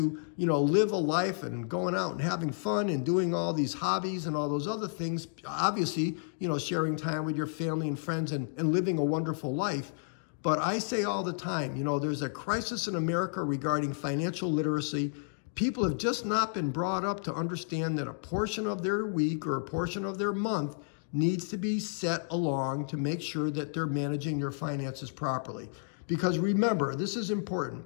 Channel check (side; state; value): right; silent; digital silence